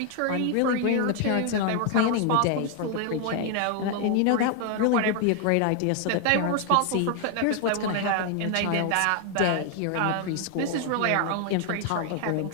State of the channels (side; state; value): both; different; correlation 0.00